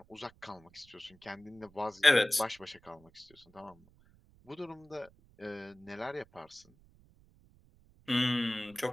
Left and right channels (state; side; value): noise; right; rumble, 28 dB below the sound